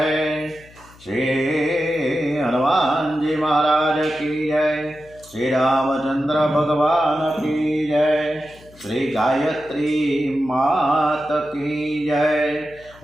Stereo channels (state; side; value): noise; left; hum, 24 dB below the sound